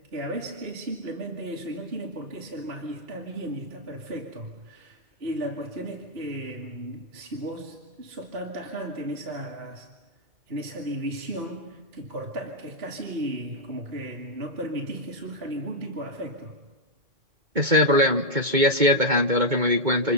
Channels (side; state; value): left; late; 2.2 ms